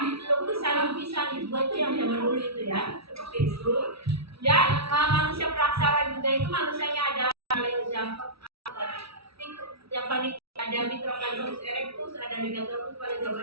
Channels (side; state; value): left; late; 0.76 ms